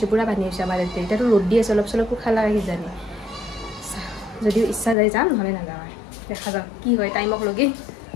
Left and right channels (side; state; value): right; drops out; at 5.0 s